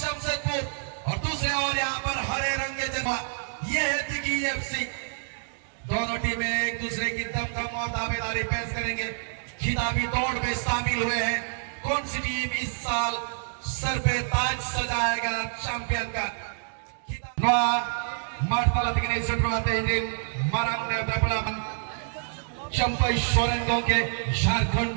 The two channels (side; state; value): left; silent; digital silence